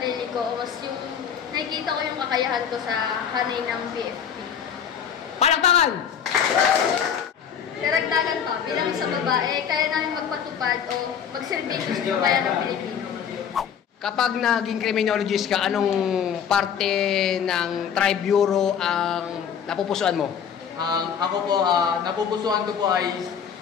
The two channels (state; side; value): quieter; right; 7.9 dB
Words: ko, mas yung nakikita ko yung kakayahan ko sa hanay ng BFP. Palakpakan! Karagdagan pa, bilang sa babae, kaya namin magpatupad o magserbisyo sa bayan ng Pilipino. Kapag naging criminologist ka, anong parte ng Tri-Bureau ang napupusuan mo? Ako po, napupusuan ko po ay